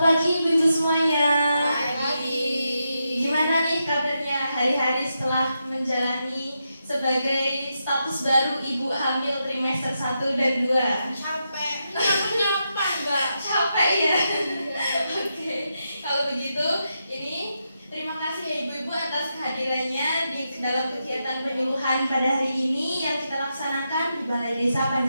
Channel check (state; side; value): inverted; both; correlation -0.85